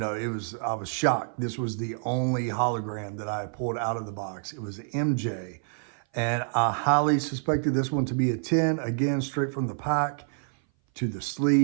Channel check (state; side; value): silent; left; 57 dB below the other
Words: I was shocked. This was the only hologram that I had pulled out of the box. It was MJ, and I highly suspected this one to be a 10, again, straight from the pack to the